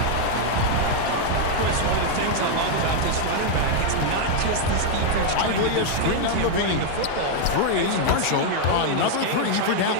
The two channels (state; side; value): different; both; correlation 0.00